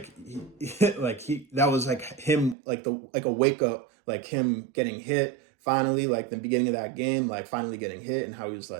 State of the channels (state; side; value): drops out; left; at 2.6 s